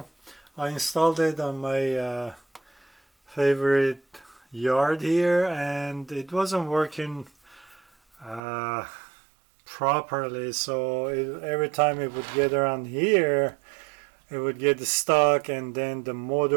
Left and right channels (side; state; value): left; drops out; at 8.4 s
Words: I installed it on my favorite yard here and it wasn't working uh, properly, so every time it would get around here it would get stuck, and then